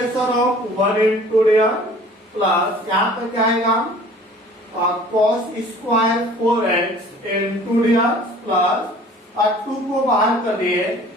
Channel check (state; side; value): normal; both; correlation 0.49